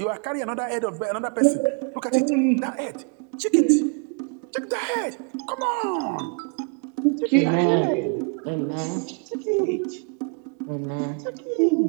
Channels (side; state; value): left; quieter; 37.9 dB